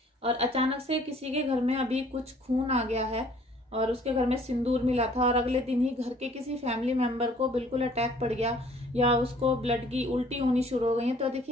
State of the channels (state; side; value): normal; both; correlation 0.56